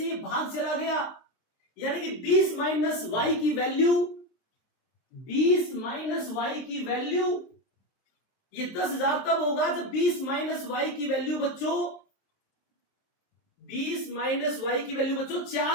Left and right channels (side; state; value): right; late; 23 ms